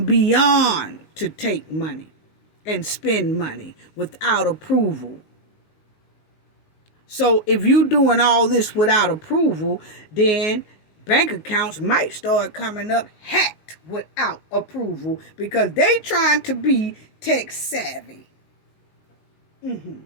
beyond to take money and spend money without approval. So if you doing all this without approval, then bank accounts might start coming up hacked without approval because they trying to be tech savvy.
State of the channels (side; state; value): right; late; 19 ms